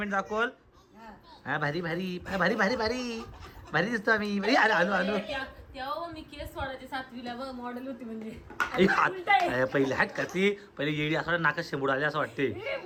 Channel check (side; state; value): both; identical; correlation 1.00